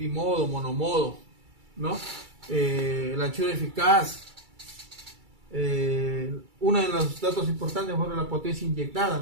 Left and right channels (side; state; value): left; late; 2.3 ms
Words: monomodo, ¿no? La anchura eficaz. Uno de los datos importantes fue la potencia inyectada